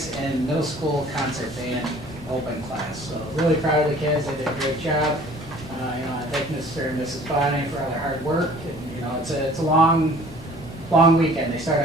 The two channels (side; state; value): both; normal; correlation 0.50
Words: in middle school concert band, open class. So really proud of the kids. They did a great job. I thank Mr. and Mrs. Bonnie for all their hard work. And, it's a long weekend. They start